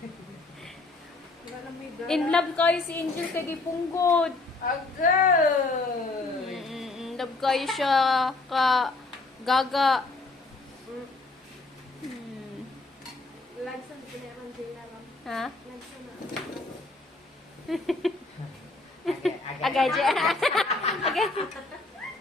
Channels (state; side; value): quieter; right; 3.3 dB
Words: Wala na may gala. In love kayo si Angel kay Gipunggod. Agay! In love kayo siya ka gaga. Lagsan pinayaman din na lang. Ha? Lagsan na. Agay dyan. Agay.